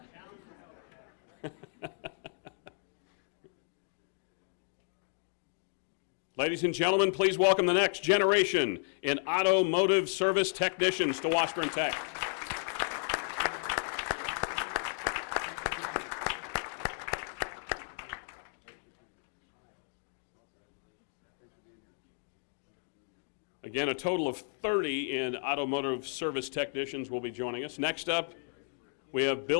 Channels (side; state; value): right; silent; 55 dB below the other